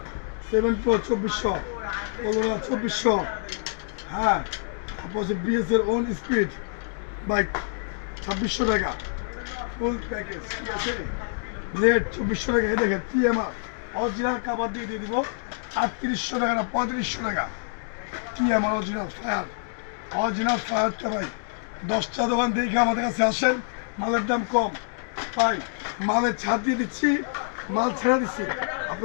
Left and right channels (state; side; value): silent; right; digital silence